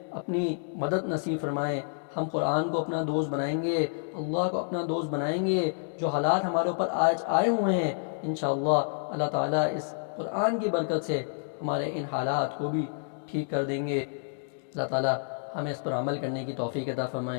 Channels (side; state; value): right; silent; digital silence